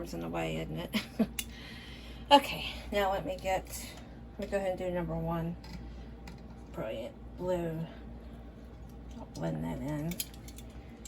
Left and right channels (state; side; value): identical; both; correlation 1.00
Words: in the way, isn't it? Okay, now let me go ahead and do number 1. Brilliant blue. I'll blend that in.